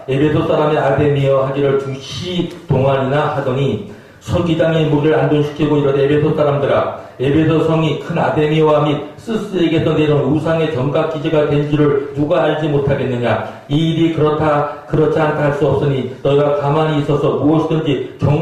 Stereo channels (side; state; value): both; identical; correlation 1.00